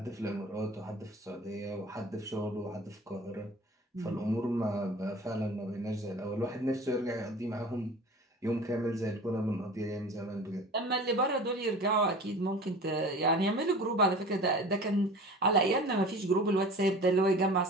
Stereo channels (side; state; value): both; normal; correlation 0.40